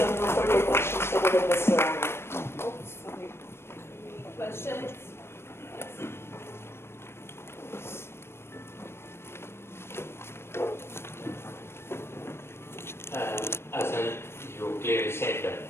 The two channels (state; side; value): late; right; 0.12 ms